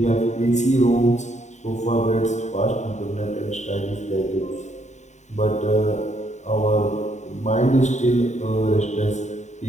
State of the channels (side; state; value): right; late; 0.34 ms